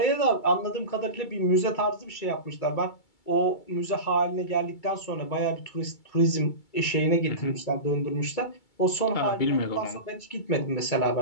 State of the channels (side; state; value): right; late; 2.3 ms